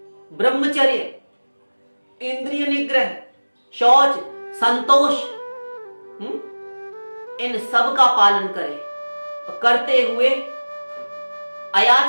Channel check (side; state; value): both; inverted; correlation -1.00